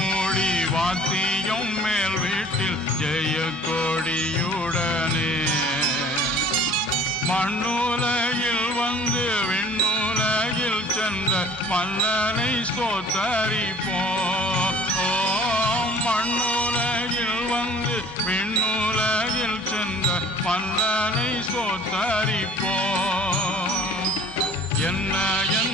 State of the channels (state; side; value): normal; both; correlation 0.51